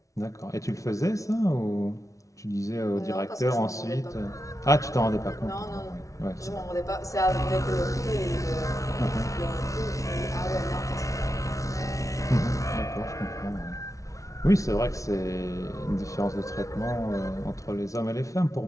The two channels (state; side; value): late; right; 0.16 ms